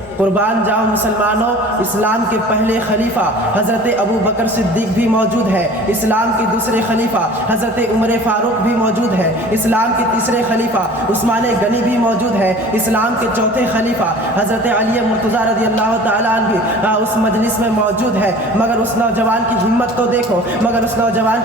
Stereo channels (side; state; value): both; normal; correlation 0.44